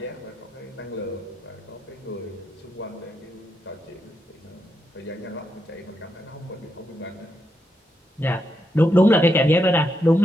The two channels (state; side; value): normal; both; correlation 0.82